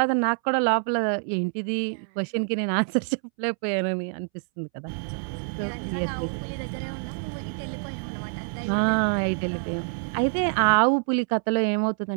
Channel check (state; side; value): silent; left; 61 dB below the other